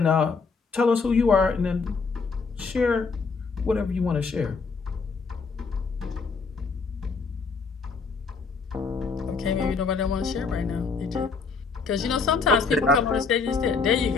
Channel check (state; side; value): quieter; right; 4.8 dB